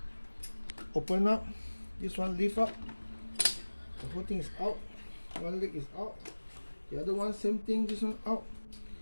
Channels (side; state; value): both; inverted; correlation -1.00